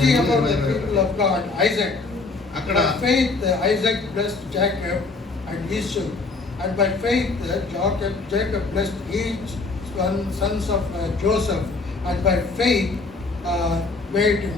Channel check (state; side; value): quieter; right; 3.9 dB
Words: అధ్యాయం about the 20-21. people of God, Isaac. అక్కడ By faith Isaac blessed Jacob and Esau, and by faith Jacob blessed each sons of Joseph, and by faith made